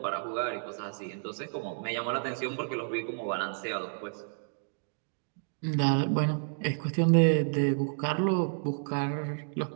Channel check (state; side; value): silent; left; digital silence